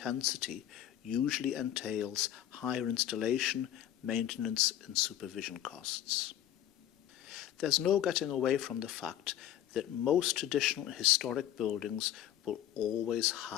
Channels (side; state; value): right; quieter; 11.7 dB